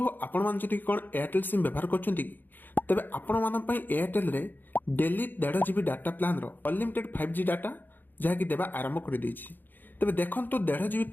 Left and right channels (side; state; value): right; late; 0.089 ms